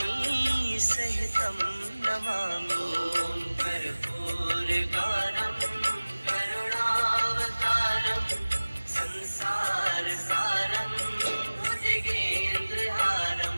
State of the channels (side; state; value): both; inverted; correlation -1.00